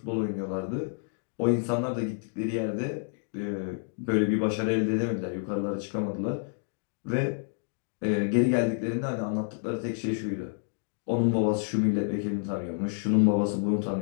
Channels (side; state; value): right; silent; digital silence